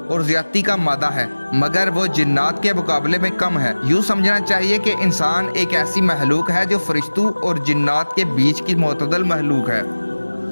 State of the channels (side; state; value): both; inverted; correlation -1.00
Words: اور زیادتی کا مادہ ہے، مگر وہ جنات کے مقابلے میں کم ہے۔ یوں سمجھنا چاہیے کہ انسان ایک ایسی مخلوق ہے جو فرشتوں اور جنات کے بیچ کی معتدل مخلوق ہے۔